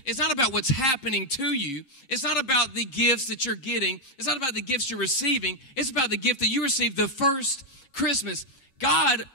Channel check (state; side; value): late; right; 6.9 ms